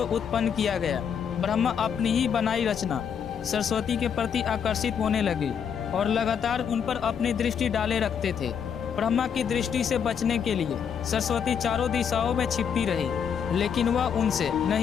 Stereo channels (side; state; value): right; quieter; 7.6 dB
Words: उत्पन्न किया गया। ब्रह्मा अपनी ही बनाई रचना सरस्वती के प्रति आकर्षित होने लगे और लगातार उन पर अपनी दृष्टि डाले रखते थे। ब्रह्मा की दृष्टि से बचने के लिए सरस्वती चारों दिशाओं में छिपती रही, लेकिन वह उनसे